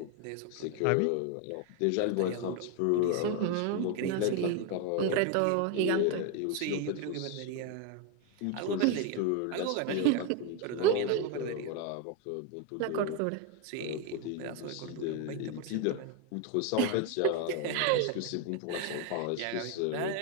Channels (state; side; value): different; both; correlation 0.01